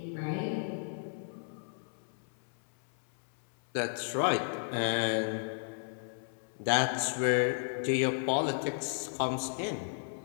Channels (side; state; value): right; silent; 55 dB below the other